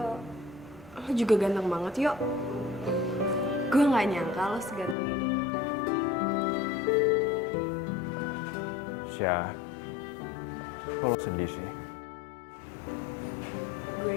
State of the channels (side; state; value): right; drops out; at 5.0 s